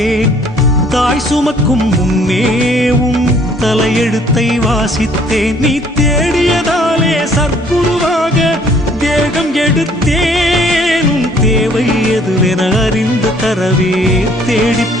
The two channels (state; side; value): normal; both; correlation 0.59